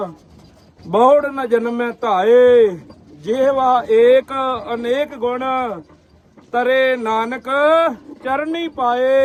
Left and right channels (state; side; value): identical; both; correlation 1.00